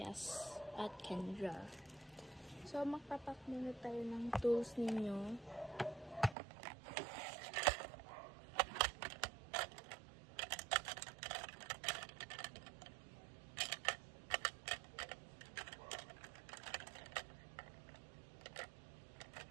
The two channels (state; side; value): drops out; left; at 6.4 s